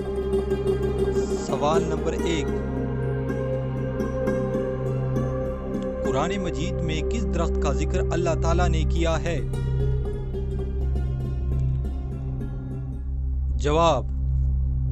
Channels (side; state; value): both; identical; correlation 1.00